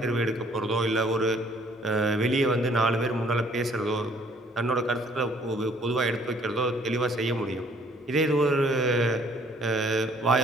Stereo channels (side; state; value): both; normal; correlation 0.60